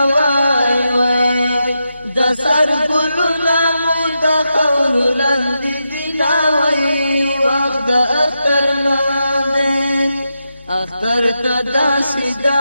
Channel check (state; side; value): inverted; both; correlation -0.87